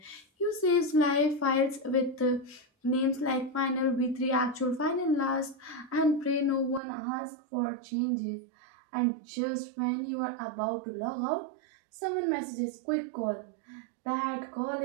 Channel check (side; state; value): left; drops out; at 6.8 s